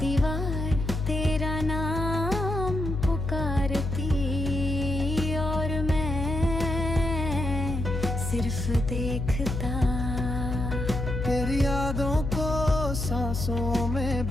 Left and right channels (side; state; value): left; noise; hum, 3 dB below the sound